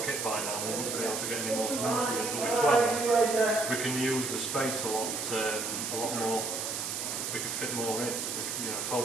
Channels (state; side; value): noise; right; hiss, 3 dB below the sound